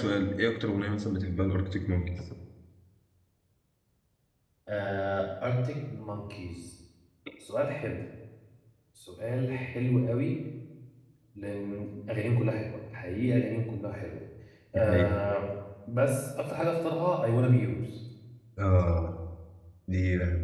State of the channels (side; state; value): both; identical; correlation 1.00